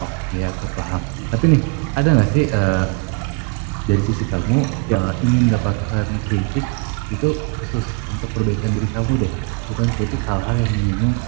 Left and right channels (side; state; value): left; quieter; 33.1 dB